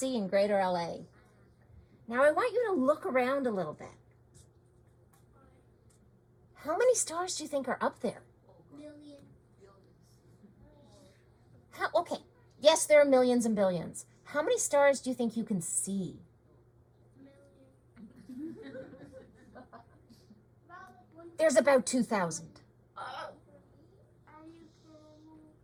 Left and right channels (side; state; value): both; identical; correlation 1.00